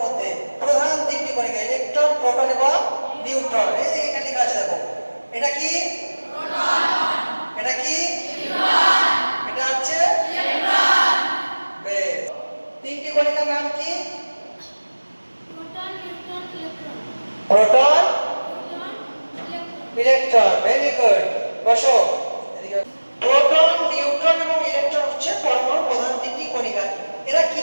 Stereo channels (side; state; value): both; inverted; correlation -1.00